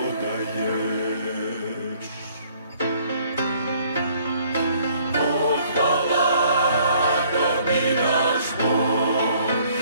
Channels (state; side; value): inverted; both; correlation -0.61